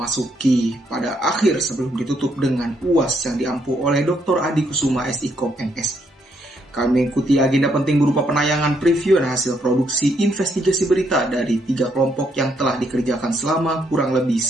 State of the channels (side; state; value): both; normal; correlation 0.74